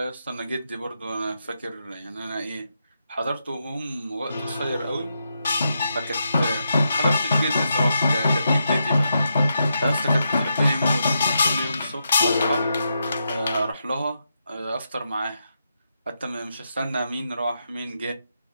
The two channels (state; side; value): inverted; both; correlation -0.84